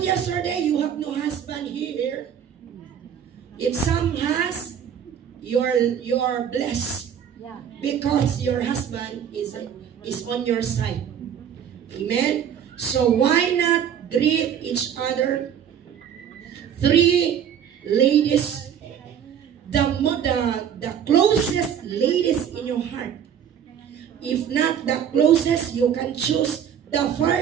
yesterday you have no husband here. If some has, you are blessed. Yeah. Because your husband is on your side. Amen. So why not greet each other? 3 ladies, the closest ladies in your heart. If not the closest, you can choose the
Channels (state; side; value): quieter; left; 8.8 dB